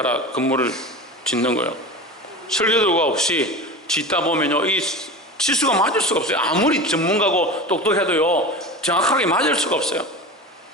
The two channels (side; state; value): both; normal; correlation 0.30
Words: 건물을 짓는 거예요. 설계도가 없이 짓다 보면요 이 치수가 맞을 수가 없어요. 아무리 전문가고 똑똑해도요 정확하게 맞을 수가 없어요.